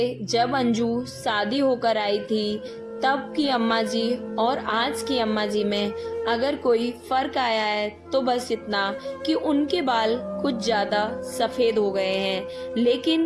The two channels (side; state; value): both; identical; correlation 1.00